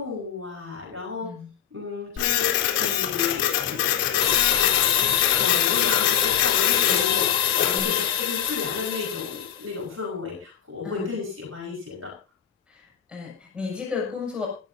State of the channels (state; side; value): quieter; right; 9.2 dB